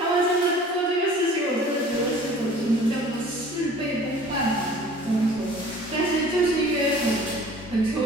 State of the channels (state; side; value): normal; both; correlation 0.48